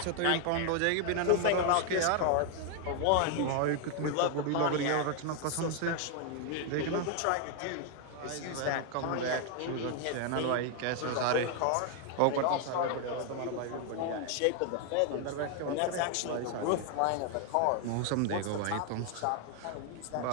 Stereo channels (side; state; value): both; different; correlation 0.00